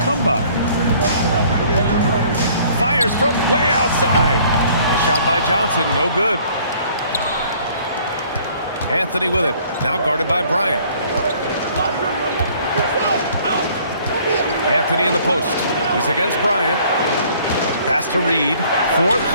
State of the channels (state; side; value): inverted; both; correlation -0.57